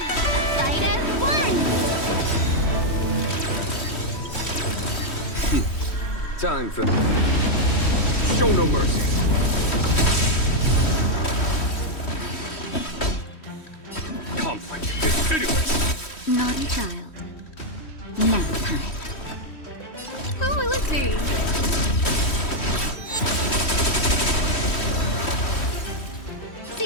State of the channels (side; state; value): right; late; 3.1 ms